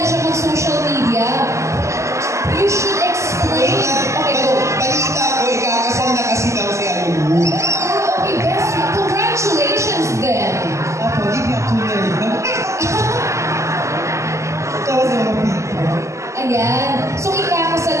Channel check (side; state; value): left; late; 0.14 ms